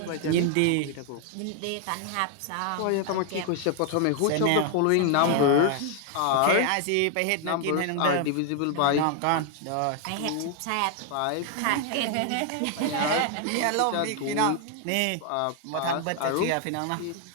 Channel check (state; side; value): different; both; correlation 0.00